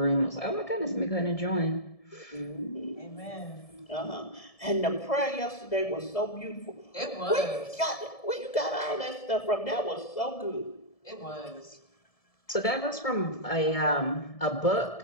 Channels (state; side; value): late; right; 1.7 ms